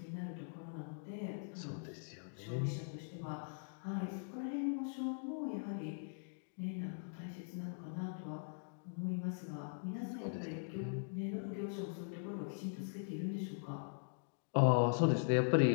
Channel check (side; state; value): right; silent; digital silence